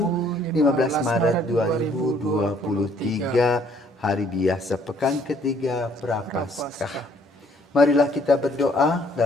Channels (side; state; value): both; normal; correlation 0.63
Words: 15 Maret 2023, hari biasa pekan ketiga Prapaskah. Marilah kita berdoa